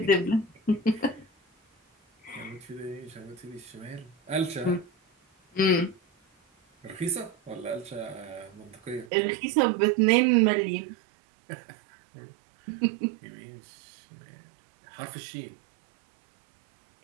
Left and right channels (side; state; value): left; drops out; at 9.1 s